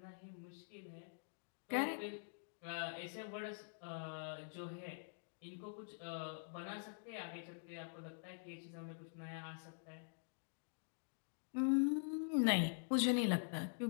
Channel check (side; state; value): right; silent; digital silence